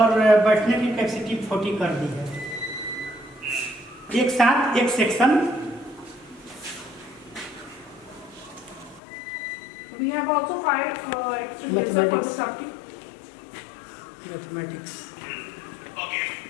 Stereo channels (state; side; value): drops out; right; at 9.0 s